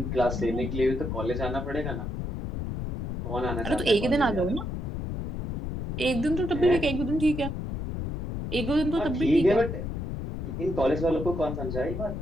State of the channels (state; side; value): noise; left; rumble, 4 dB below the sound